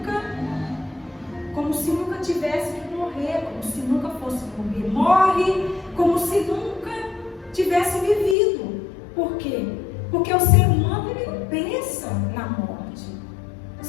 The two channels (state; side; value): drops out; right; at 8.3 s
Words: nunca tivesse que morrer, como se nunca fosse morrer. Morre como se nunca tivesse vivido. Por quê? Porque o ser humano, ele não pensa na morte.